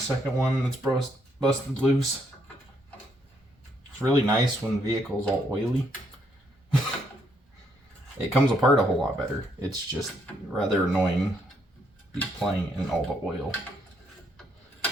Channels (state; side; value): normal; both; correlation 0.73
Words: one that's busted loose. It's really nice when the vehicle's all oily. It comes apart a whole lot better. It's just rather annoying be playing in all the oil